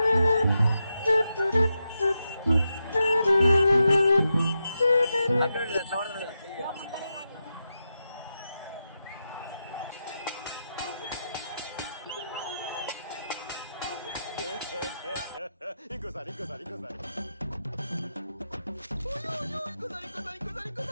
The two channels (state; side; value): inverted; both; correlation -0.87